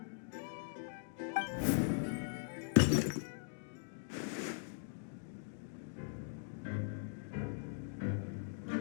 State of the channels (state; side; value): silent; right; digital silence